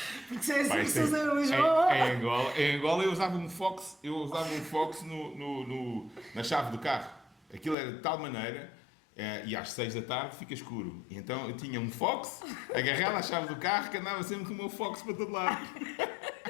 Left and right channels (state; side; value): drops out; right; at 7.8 s